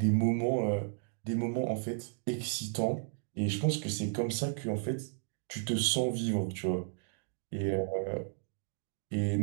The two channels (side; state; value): left; silent; digital silence